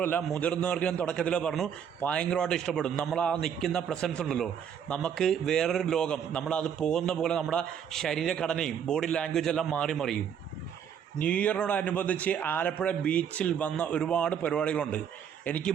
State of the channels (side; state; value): left; quieter; 8.3 dB